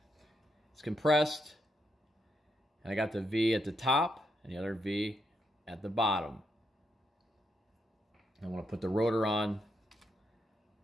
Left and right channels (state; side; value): normal; both; correlation 0.80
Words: It's compressed, and I got the V at the top and the other V at the bottom. I want to put the rotor on.